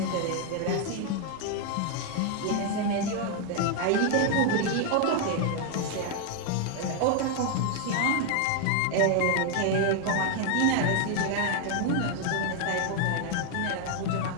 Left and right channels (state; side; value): different; both; correlation 0.00